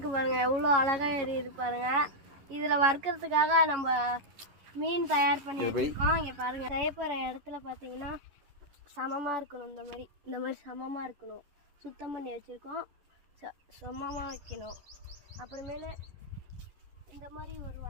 பாருங்க, எவ்வளோ அழகா எரியுது பாருங்க. இதில் வறுக்கிறதுக்காக நம்ம மீன் தயார் பண்ணி வச்சுருக்கோம். இங்கே பாருங்க, செய்ய போகிற இடத்துல பார்த்தீங்கன்னா சமமாக இருக்கணும், இந்த மாதிரி சமமாக இருக்கணும். சுத்தம் பண்ணி வச்சுருக்கோம், சமமாக வைக்கணும். அப்புறமேல இந்த மாதிரி ஒரு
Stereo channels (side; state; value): left; late; 11 ms